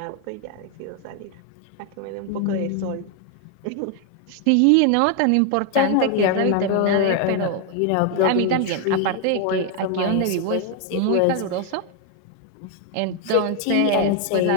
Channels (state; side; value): different; both; correlation 0.01